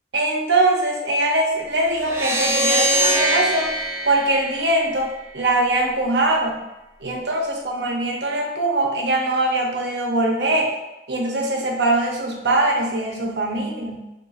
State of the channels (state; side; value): normal; both; correlation -0.15